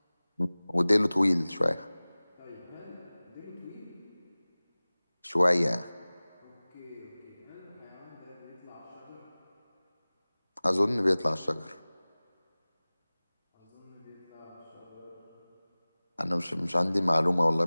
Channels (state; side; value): inverted; both; correlation -0.99